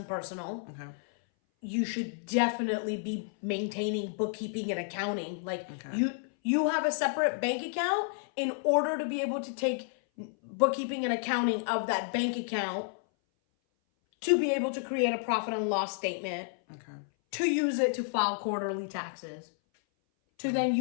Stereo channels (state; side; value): silent; right; 57 dB below the other